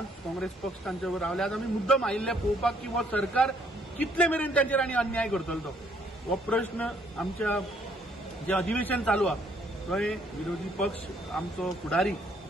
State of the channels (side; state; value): both; normal; correlation 0.66